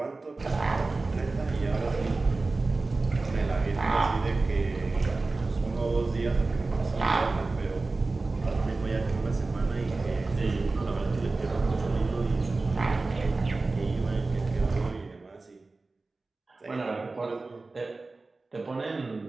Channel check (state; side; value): quieter; left; 3.5 dB